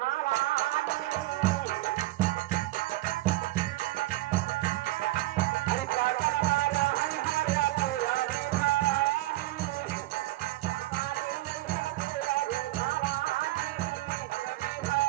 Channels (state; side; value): quieter; left; 17.9 dB